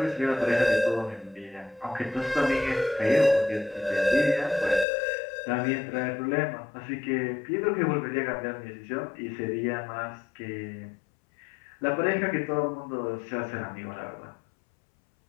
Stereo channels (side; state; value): right; drops out; at 4.9 s